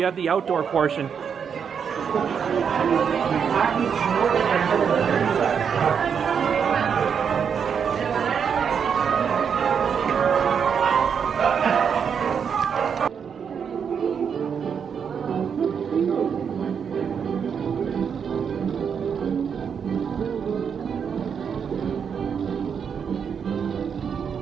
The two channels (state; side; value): quieter; left; 7.0 dB